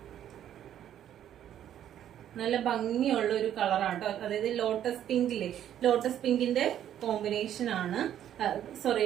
നല്ല ഭംഗിയുള്ള ഒരു കളറാട്ടോ. അതായത് ലോട്ടസ് പിങ്കിലെ ലോട്ടസ് പിങ്കിന്റെ കോമ്പിനേഷൻ ആണ്.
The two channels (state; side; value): quieter; left; 10.7 dB